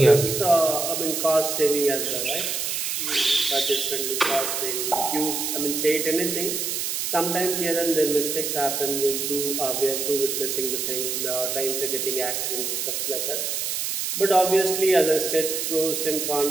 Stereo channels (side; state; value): right; noise; hiss, 1 dB below the sound